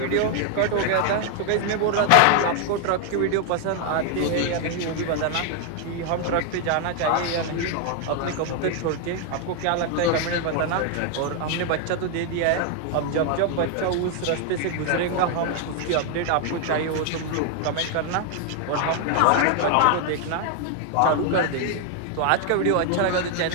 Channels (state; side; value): different; both; correlation 0.00